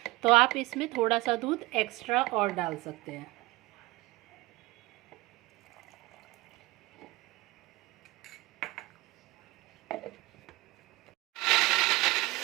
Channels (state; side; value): quieter; left; 20.6 dB